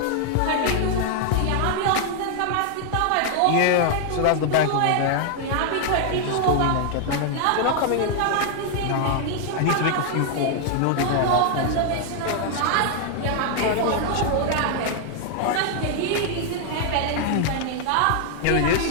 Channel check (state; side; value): different; both; correlation 0.00